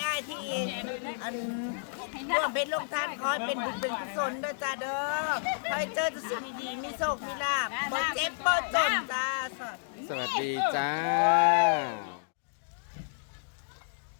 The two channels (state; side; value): silent; right; digital silence